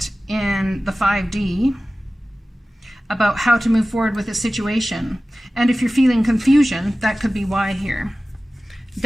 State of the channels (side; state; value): both; normal; correlation 0.96